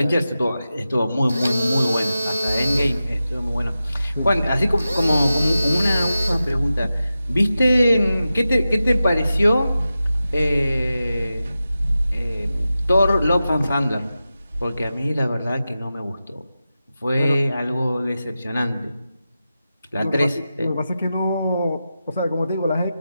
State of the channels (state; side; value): inverted; both; correlation -0.92